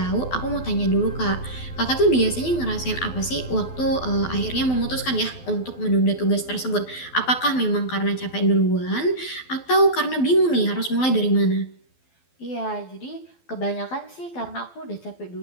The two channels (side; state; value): right; late; 12 ms